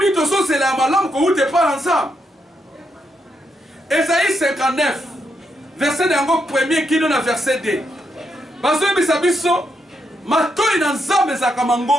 ozo c'est la malamu ko ute pas ensemble. Esaïe 59 verset d'ango premier qui donne verset 2. Bazo bisabiso matoi na nzambe ezalaka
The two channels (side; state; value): both; normal; correlation 0.80